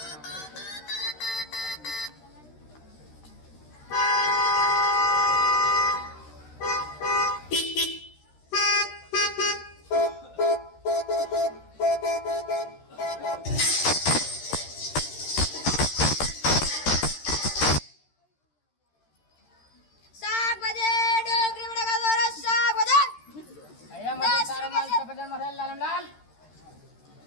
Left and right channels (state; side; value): late; right; 13 ms